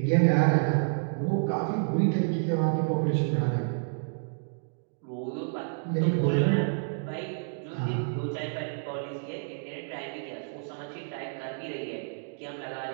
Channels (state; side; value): silent; left; digital silence